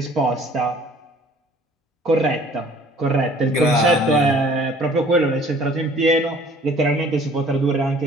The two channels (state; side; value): normal; both; correlation 0.54